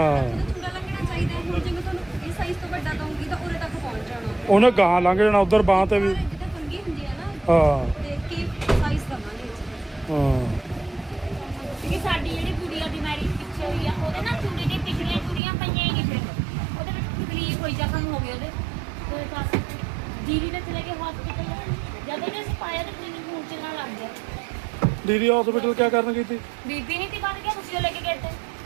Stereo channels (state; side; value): drops out; left; at 15.4 s